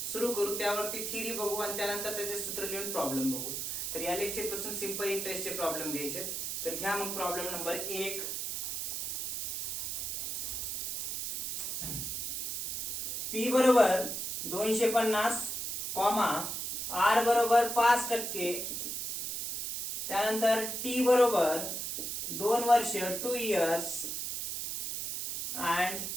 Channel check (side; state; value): right; noise; hiss, 3 dB below the sound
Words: सुरू करू, त्यावरती थिअरी बघू आणि त्यानंतर त्याचे सूत्र लिहून प्रॉब्लेम बघू। तर या लेक्चर पासून सिंपल इंटरेस्टचे प्रॉब्लेम घ्यायचे। तर घ्या मग प्रॉब्लेम नंबर 1। P बरोबर 250, R बरोबर 5%, त्यानंतर T बरोबर 2 वर्ष 2 years